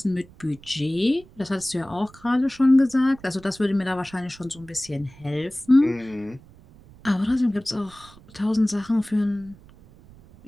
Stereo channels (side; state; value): right; noise; rumble, 23 dB below the sound